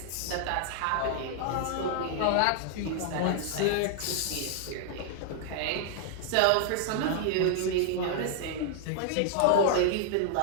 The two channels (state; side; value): different; both; correlation -0.01